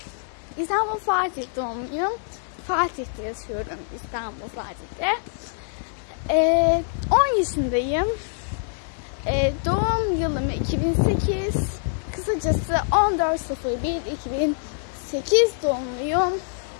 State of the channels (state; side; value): silent; right; 62 dB below the other